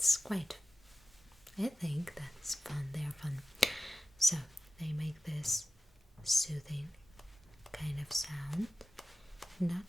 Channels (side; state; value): both; normal; correlation 0.94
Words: quite, I think that's fun. They're fun. So they make this soothing kind of sound,